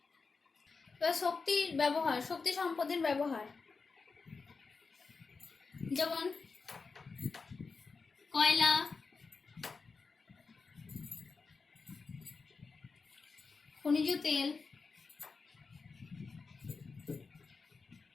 এবার শক্তির ব্যবহার, শক্তি সম্পদের ব্যবহার, যেমন কয়লা, খনিজ তেল,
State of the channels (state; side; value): quieter; right; 4.6 dB